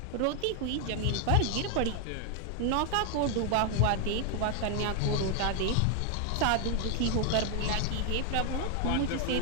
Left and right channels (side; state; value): both; different; correlation 0.00